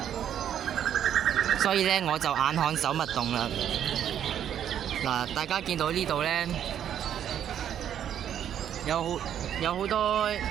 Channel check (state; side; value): quieter; left; 9.8 dB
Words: 所以呢我就眼看手勿動啦。嗱，大家見到呢度呢，有好多